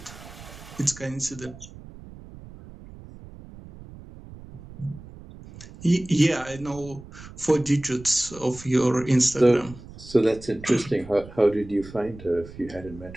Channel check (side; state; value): right; noise; rumble, 17 dB below the sound